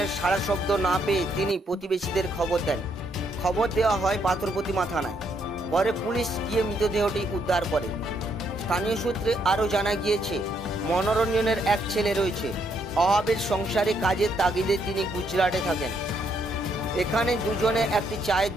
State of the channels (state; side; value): normal; both; correlation 0.73